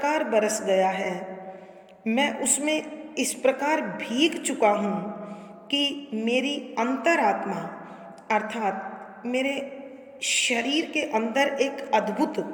बरस गया है, मैं उसमें इस प्रकार भीग चुका हूँ कि मेरी अंतरात्मा अर्थात मेरे शरीर के अंदर एक अद्भुत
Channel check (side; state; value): both; identical; correlation 1.00